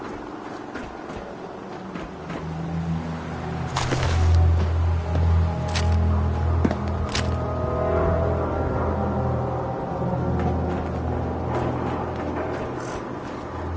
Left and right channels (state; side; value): identical; both; correlation 1.00